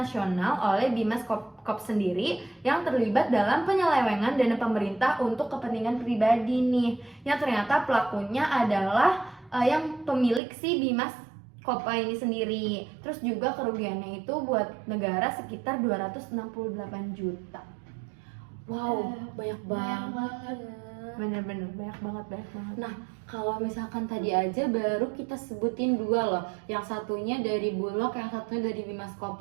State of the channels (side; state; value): left; drops out; at 10.4 s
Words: oleh Bimaskop sendiri yang terlibat dalam penyelewengan dana pemerintah untuk kepentingan pribadi nih. Yang ternyata pelakunya adalah yang pemilik si Bimaskopa ini sendiri. Terus juga kerugiannya itu buat negara sekitar 268 juta. Wow, banyak banget. Bener-bener banyak banget. Nah, kalau misalkan tadi aja baru kita sebutin dua loh. Yang satunya dari Bulog, yang satunya dari